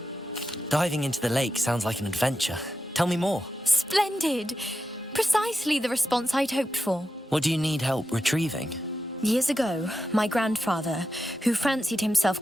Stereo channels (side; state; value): both; normal; correlation 0.89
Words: Diving into the lake sounds like an adventure. Tell me more. Splendid! Precisely the response I'd hoped for. What do you need help retrieving? Years ago, my grandfather, who fancied himself